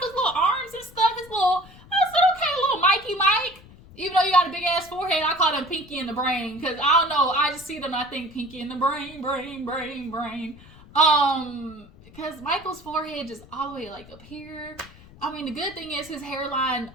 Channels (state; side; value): noise; left; rumble, 22 dB below the sound